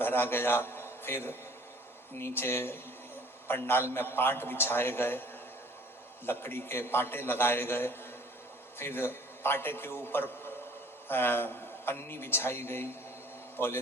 गया। फिर नीचे पंडाल में पाट बिछाए गए, लकड़ी के पाटे लगाए गए, फिर पाटे के ऊपर पन्नी बिछाई गई,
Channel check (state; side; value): normal; both; correlation 0.52